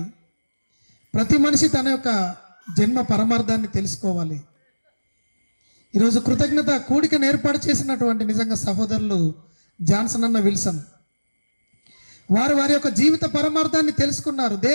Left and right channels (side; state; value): both; inverted; correlation -1.00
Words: ప్రతి మనిషి తన యొక్క జన్మ పరమార్థాన్ని తెలుసుకోవాలి. ఈరోజు కృతజ్ఞత కూడికను ఏర్పాటు చేసినటువంటి నిజంగా సహోదరులు జాన్సన్ అన్న విల్సన్ వారు వారి యొక్క జీవిత పరమార్థాన్ని తెలుసుకున్నారు.